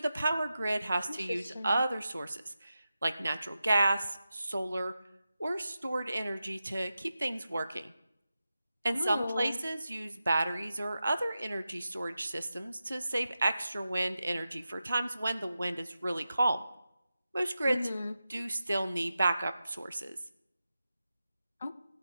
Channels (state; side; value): inverted; both; correlation -0.92